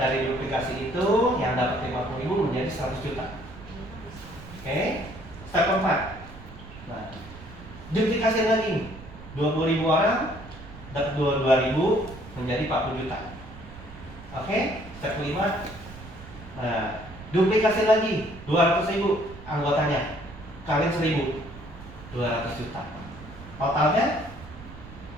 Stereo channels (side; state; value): right; noise; rumble, 16 dB below the sound